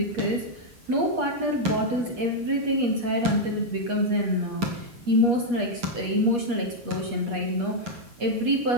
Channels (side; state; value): left; late; 8.3 ms